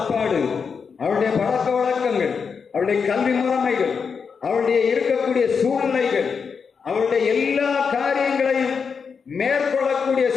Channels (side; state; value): right; quieter; 5.9 dB